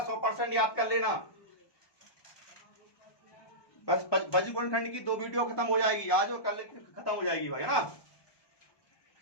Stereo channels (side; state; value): right; late; 1.2 ms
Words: 100% याद कर लेना। बस बज्रगुणनखंड की 2 वीडियो खत्म हो जाएगी आज और कल खत्म हो जाएगी भाई, है ना।